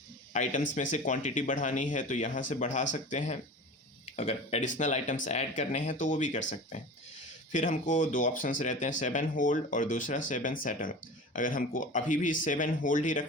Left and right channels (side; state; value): both; normal; correlation 0.35